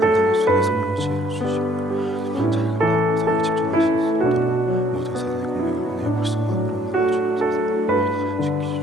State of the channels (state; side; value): normal; both; correlation 0.63